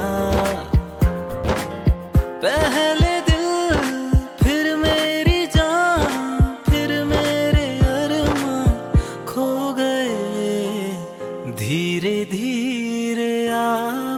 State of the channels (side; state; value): both; identical; correlation 1.00